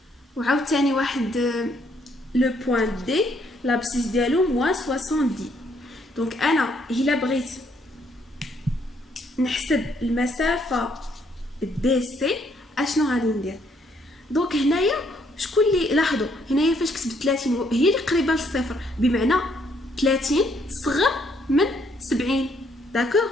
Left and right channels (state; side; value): normal; both; correlation 0.70